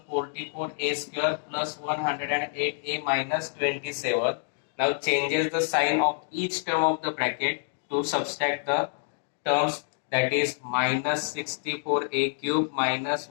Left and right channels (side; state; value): right; silent; digital silence